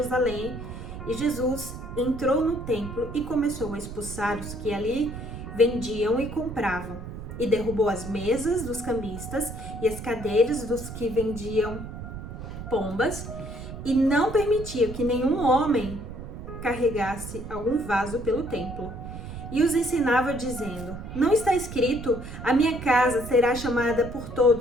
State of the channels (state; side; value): noise; right; rumble, 10 dB below the sound